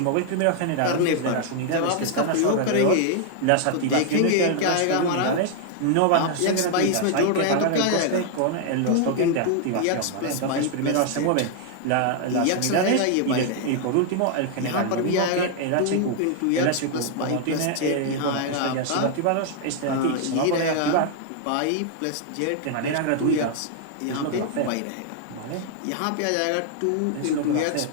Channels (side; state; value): both; different; correlation 0.00